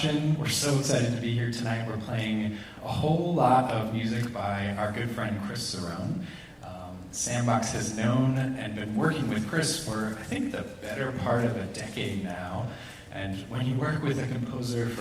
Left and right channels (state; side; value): identical; both; correlation 1.00